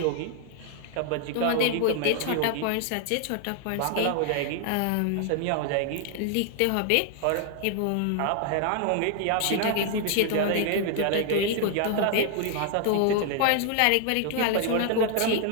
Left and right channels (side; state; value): both; different; correlation 0.00